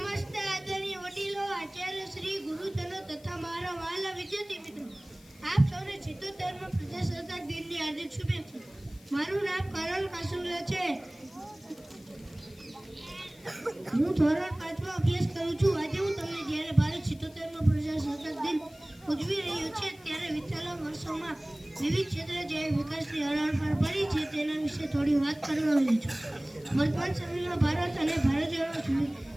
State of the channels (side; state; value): left; noise; hiss, 26 dB below the sound